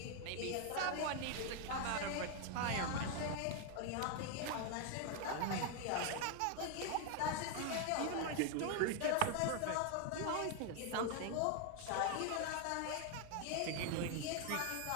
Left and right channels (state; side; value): different; both; correlation 0.01